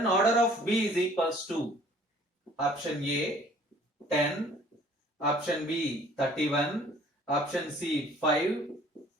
order of B is equals to option A 10, option B 31, option C 5,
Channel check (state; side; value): normal; both; correlation 0.54